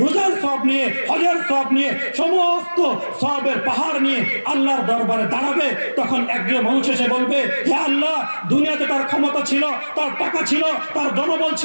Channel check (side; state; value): both; inverted; correlation -1.00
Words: রোজার সওয়াব নিয়ে, হজের সওয়াব নিয়ে, সমস্ত সওয়াবের পাহাড় নিয়ে আল্লাহর দরবারে দাঁড়াবে। তখন একজন মানুষ এসে বলবে, হে আল্লাহ, দুনিয়াতে তার ক্ষমতা ছিল, তার টাকা ছিল, তার জনবল